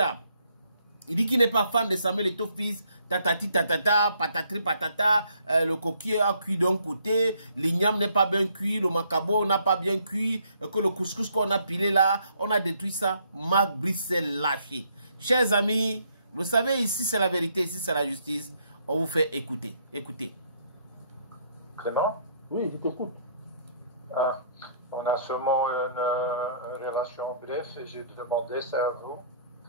Il dit qu'il n'est pas fan de Samuel Eto'o fils, tatati tatata, patatri patata, le coquille a cuit d'un côté, l'igname n'est pas bien cuit, le macabo n'a pas bien cuit, que le couscous qu'on a pilé là, on a détruit ça. Mac Brice s'est lâché. Chers amis, vous savez, ici c'est la vérité, ici c'est la justice. On vous fait écouter. Écoutez. Clément? Oui, je t'écoute. On a sûrement une relation bref et j'ai demandé ça à vous.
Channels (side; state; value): both; inverted; correlation -0.67